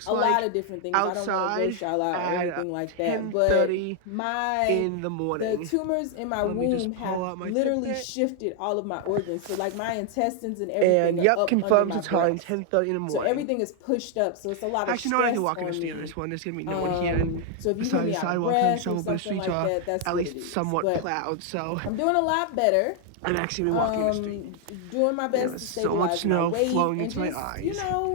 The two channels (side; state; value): both; different; correlation 0.00